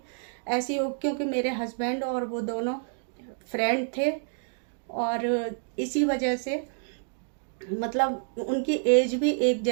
ऐसी हो, क्योंकि मेरे हस्बैंड और वो दोनों फ्रेंड थे, और इसी वजह से मतलब उनकी एज भी एक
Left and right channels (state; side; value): silent; left; digital silence